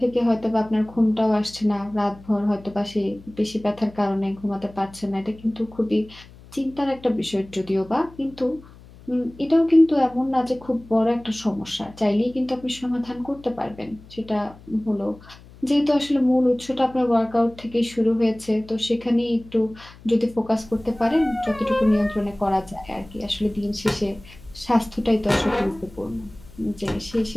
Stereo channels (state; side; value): noise; left; hum, 21 dB below the sound